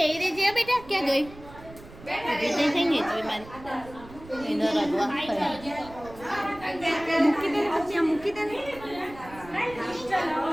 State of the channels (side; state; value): right; noise; rumble, 18 dB below the sound